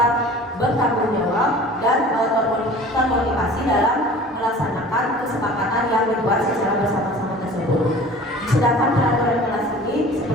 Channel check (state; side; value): normal; both; correlation 0.44